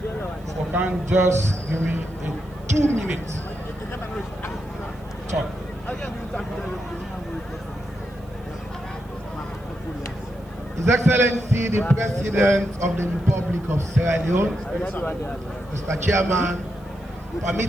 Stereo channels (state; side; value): noise; right; hiss, 30 dB below the sound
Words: for can just give me a 2 minutes talk. His Excellency, the President of the Republic of Sierra Leone, Mr. Chairman,